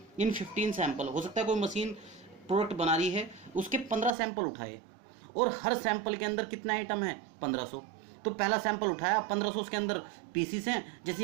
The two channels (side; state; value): left; drops out; at 4.2 s